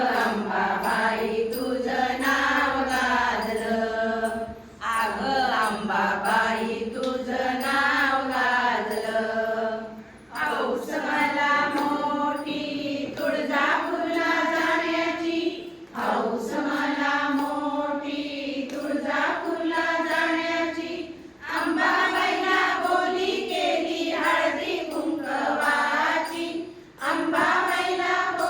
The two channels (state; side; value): identical; both; correlation 1.00